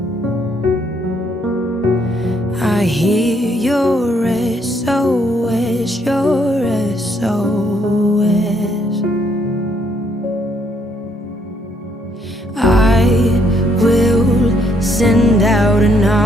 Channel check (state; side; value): normal; both; correlation 0.70